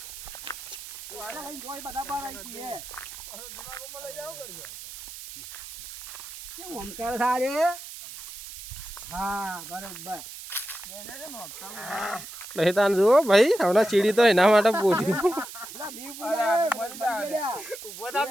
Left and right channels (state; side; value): noise; right; hiss, 12 dB below the sound